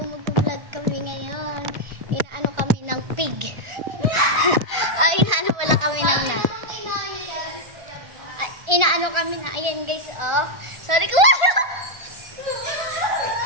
kami ngayon. Inaano kami ng pig. Inaano wala kami ng inaano kami na, ayan guys, oh. Sorry ko.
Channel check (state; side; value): late; left; 1.5 ms